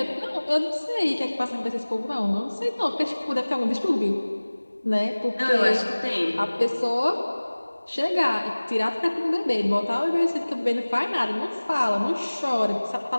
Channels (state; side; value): inverted; both; correlation -1.00